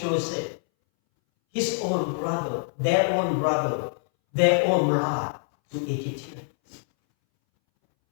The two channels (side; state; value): right; silent; 62 dB below the other